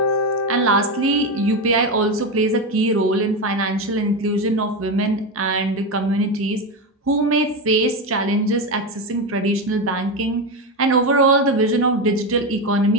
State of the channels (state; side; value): normal; both; correlation 0.14